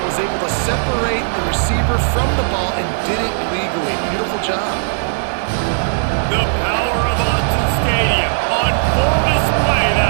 was able to separate the receiver from the ball, and did it legally. Beautiful job. The power of Autzen Stadium on full display.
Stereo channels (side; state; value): left; silent; 56 dB below the other